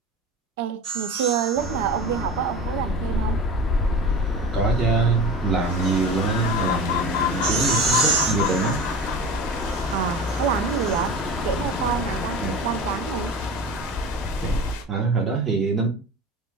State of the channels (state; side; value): normal; both; correlation 0.33